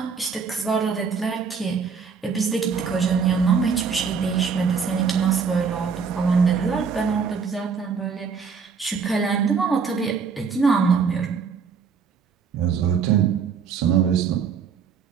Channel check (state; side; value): quieter; left; 5.9 dB